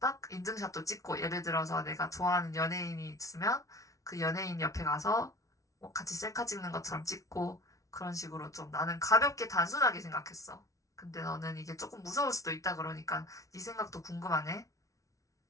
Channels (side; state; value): right; late; 0.16 ms